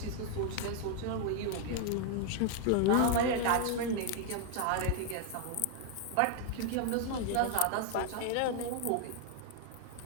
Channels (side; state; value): both; different; correlation 0.00